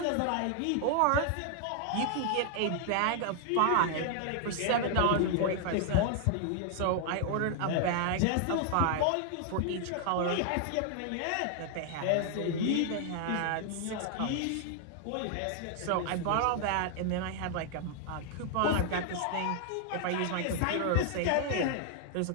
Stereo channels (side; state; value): both; different; correlation 0.00